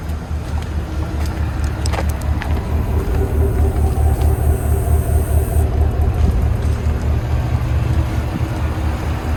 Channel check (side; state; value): both; identical; correlation 1.00